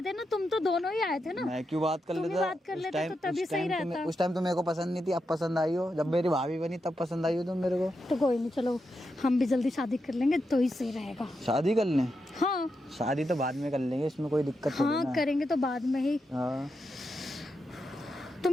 ना, तुम तो दोनों ही आए थे ना। मैं क्यों बात कर तुम ही लेता? बात कर लेते तो तभी सही रहता। उस टाइम तो मेरे को पसंद नहीं थी, अब पसंद आई हो। जब मेरी भाभी बनी तब पसंद आई हो तुम मेरे को। तो कोई नहीं, चलो हम भी जल्दी शादी कर लेंगे तो ही सही रहेगा। शादी कर लें? हाँ शादी तो बाद में कर लेंगे, इसमें कोई दिक्कत नहीं हाँ, है। करेंगे तो बाद में ही। हाँ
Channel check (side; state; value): both; normal; correlation 0.86